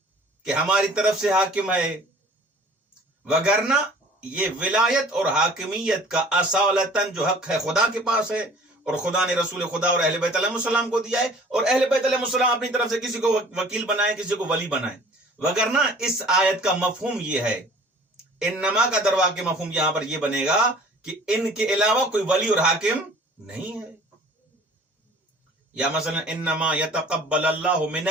کہ ہماری طرف سے حاکم ہے، وگرنہ یہ ولایت اور حاکمیت کا اصالتاً جو حق ہے خدا کے پاس ہے، اور خدا نے رسول خدا اور اہل بیت علیہ السلام کو دیا ہے، اور اہل بیت علیہ السلام اپنی طرف سے کسی کو وکیل بنائے، کسی کو ولی بنائے. وگرنہ اس آیت کا مفہوم یہ ہے، انما کا دروا کے مفہوم یہاں پر یہ بنے گا کہ ان کے علاوہ کوئی ولی اور حاکم نہیں ہے. یا مثلا انما یتقبل اللہ من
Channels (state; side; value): normal; both; correlation 0.49